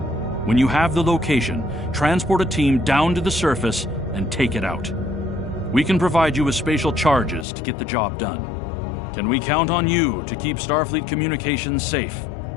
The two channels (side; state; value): right; drops out; at 7.5 s